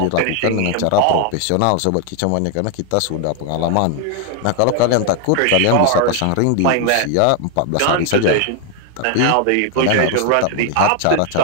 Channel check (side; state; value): both; different; correlation 0.00